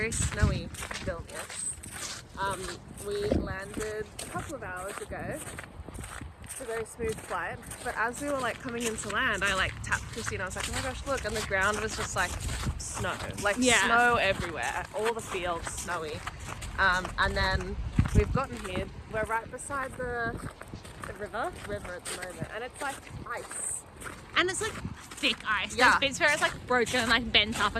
snowy Vilnius. We landed a couple of hours ago. It's a very smooth flight, but as we were like coming into land, I like tapped Krissie and I was like, oh my gosh, look, and the ground was just like snow, like snow everywhere, all the fields snowy. And then we've gotten here, we're right beside the river at the moment, and it's like ice. And it's like thick ice. Yeah. There's bits where it's like broken and like bent up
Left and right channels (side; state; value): both; identical; correlation 1.00